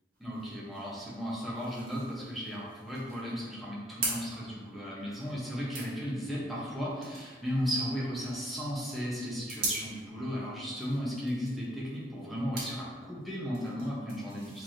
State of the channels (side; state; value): both; normal; correlation 0.66